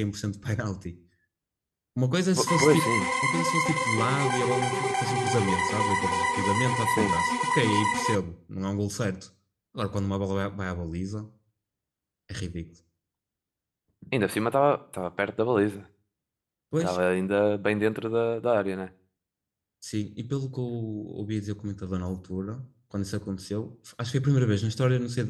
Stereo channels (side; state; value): both; identical; correlation 1.00